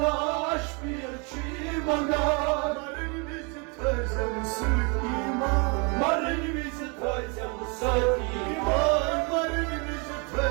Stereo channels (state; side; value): quieter; left; 33.1 dB